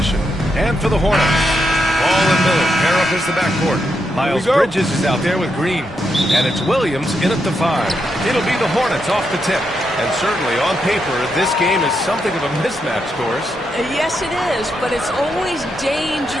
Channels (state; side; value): normal; both; correlation 0.82